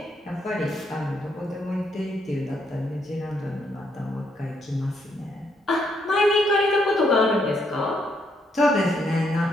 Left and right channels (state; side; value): normal; both; correlation 0.75